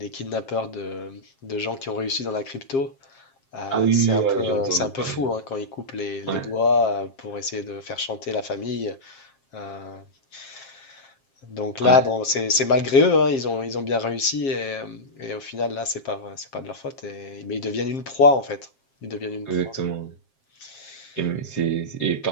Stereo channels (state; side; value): late; right; 7.5 ms